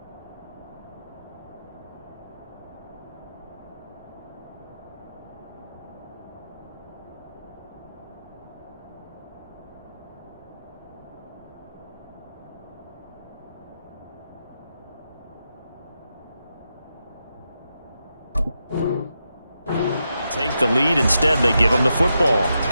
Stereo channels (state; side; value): inverted; both; correlation -0.86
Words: Take the lead. Instead, they give them the football.